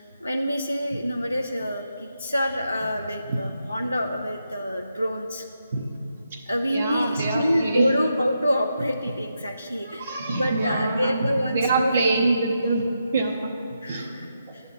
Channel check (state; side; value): inverted; both; correlation -0.83